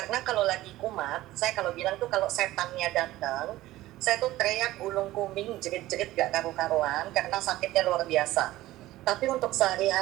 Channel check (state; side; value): quieter; left; 16.4 dB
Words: kalau lagi kumat, saya kalau bilang tuh kalau setannya datang, saya tuh teriak ulung kuming, jerit-jerit gak karu-karuan karena sakitnya luar biasa. Tapi untuk